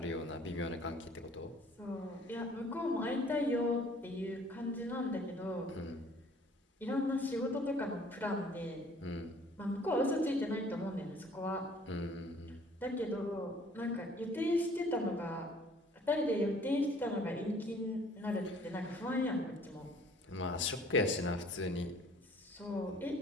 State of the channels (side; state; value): both; normal; correlation 0.55